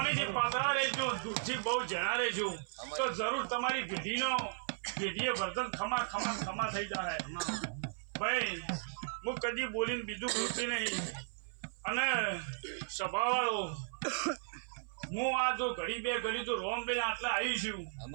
પાતળા રહેજો દૂધથી બહુ જણા રહેજો તો જરૂર તમારી પેઢીએ વર્તન ખમા ખમા ખમા થઈ જાય ભાઈ હું કદી બોલીને બીજું બોલતી નહીં અને સભાવાળો હું આ જો ઘડી બે ઘડી તો રોમ બે આટલા આવી છું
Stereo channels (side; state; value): left; silent; 54 dB below the other